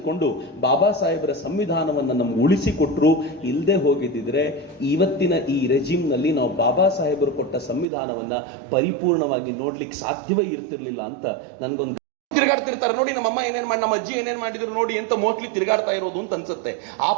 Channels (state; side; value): drops out; left; at 7.9 s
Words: ಬಾಬಾ ಸಾಹೇಬರ ಸಂವಿಧಾನವನ್ನ ನಮ್ಗೆ ಉಳಿಸಿಕೊಟ್ರು. ಇಲ್ಲದೆ ಹೋಗಿದ್ದಿದ್ರೆ ಇವತ್ತಿನ ಈ ರೆಜಿಮ್ ನಲ್ಲಿ ನಾವು ಬಾಬಾ ಸಾಹೇಬರು ಕೊಟ್ಟ ಸಂವಿಧಾನವನ್ನ ಪರಿಪೂರ್ಣವಾಗಿ ನೋಡ್ಲಿಕ್ಕೆ ಸಾಧ್ಯವೇ ಇರ್ತಿರ್ಲಿಲ್ಲ ಅಂತ ನನ್ಗೊಂದು ತಿರುಗಾಡ್ತಿರ್ತಾರೆ. ನೋಡಿ ನಮ್ಮಮ್ಮ ಏನೇನ್ ಮಾಡಿ, ನಮ್ಮ ಅಜ್ಜಿ ಏನೇನ್ ಮಾಡಿದ್ರು ನೋಡಿ ಅಂತ ಮೋಸ್ಟ್ಲಿ ತಿರುಗಾಡ್ತಾ ಇರೋದು ಅಂತ ಅನ್ಸುತ್ತೆ. ಆ